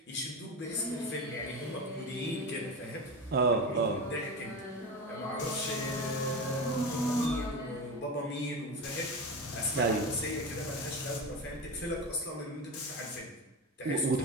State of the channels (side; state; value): both; normal; correlation 0.23